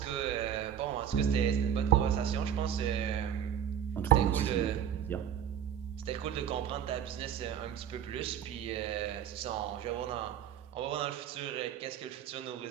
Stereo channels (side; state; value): left; quieter; 9.3 dB